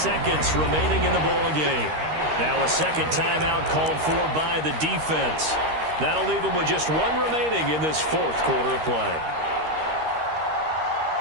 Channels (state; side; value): late; left; 13 ms